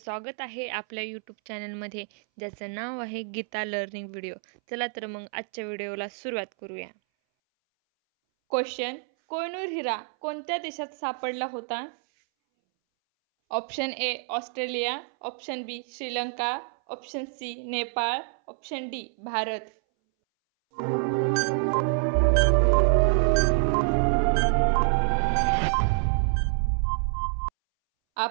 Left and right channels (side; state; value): left; silent; 60 dB below the other